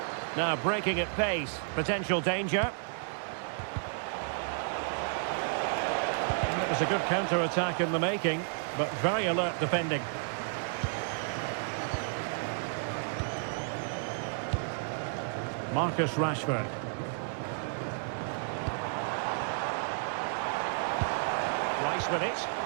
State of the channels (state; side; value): silent; left; digital silence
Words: Now breaking at pace. Potential danger. And it was a good counter-attack in the making, but very alert defending. Marcus Rashford. Rice with it.